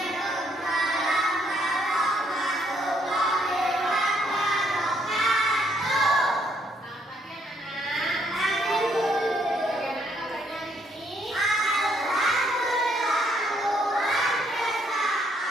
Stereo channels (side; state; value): both; normal; correlation 0.70